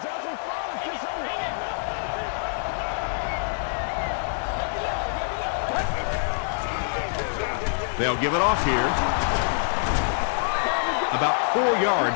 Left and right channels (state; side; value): silent; right; digital silence